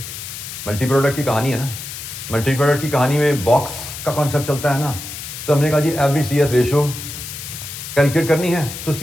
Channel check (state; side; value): noise; left; hiss, 9 dB below the sound